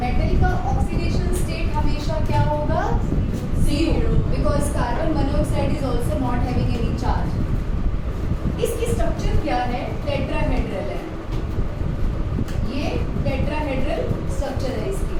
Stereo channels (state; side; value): identical; both; correlation 1.00